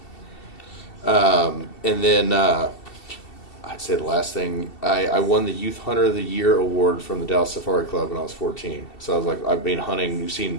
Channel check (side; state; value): right; late; 2.7 ms